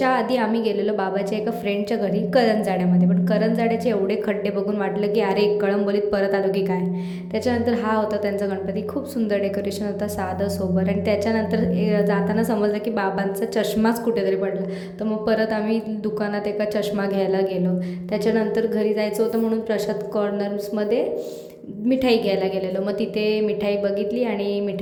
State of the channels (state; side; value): identical; both; correlation 1.00